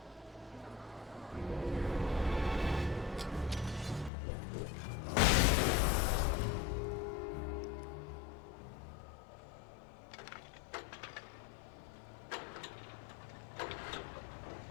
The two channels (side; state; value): right; drops out; at 4.1 s